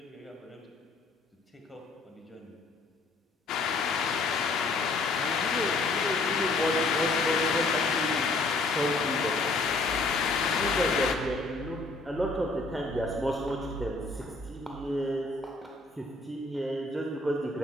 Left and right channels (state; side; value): quieter; right; 3.3 dB